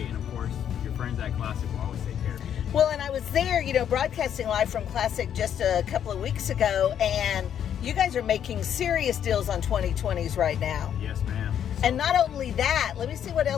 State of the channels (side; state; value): right; quieter; 9.3 dB